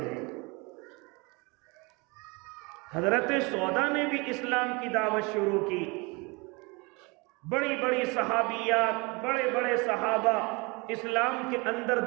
ہیں۔ حضرت سودا نے بھی اسلام کی دعوت شروع کی۔ بڑی بڑی صحابیات، بڑے بڑے صحابہ اسلام کے اندر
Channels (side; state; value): left; quieter; 27.9 dB